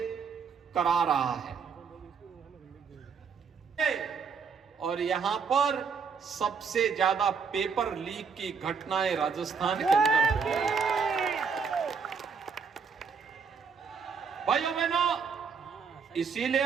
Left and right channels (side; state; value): left; quieter; 5.8 dB